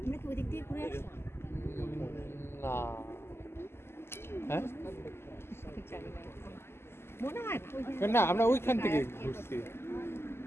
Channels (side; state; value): right; late; 0.12 ms